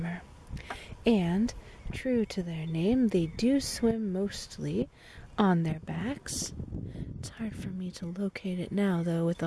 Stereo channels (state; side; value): identical; both; correlation 1.00